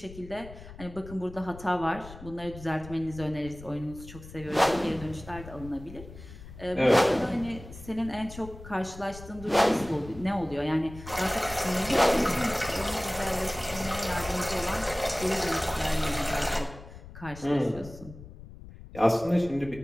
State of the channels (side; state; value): left; noise; rumble, 15 dB below the sound